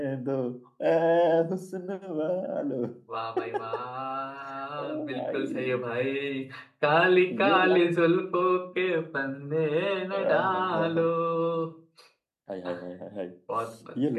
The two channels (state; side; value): identical; both; correlation 1.00